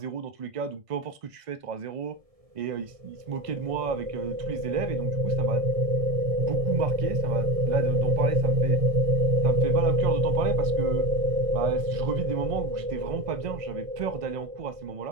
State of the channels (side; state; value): left; late; 1.5 ms